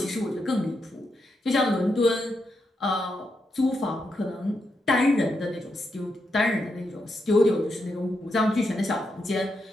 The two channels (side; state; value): both; normal; correlation 0.83